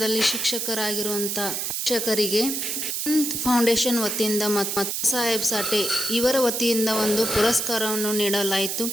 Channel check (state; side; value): noise; right; hiss, 2 dB below the sound